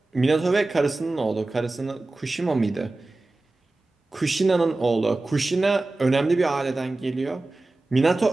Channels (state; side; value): quieter; left; 3.1 dB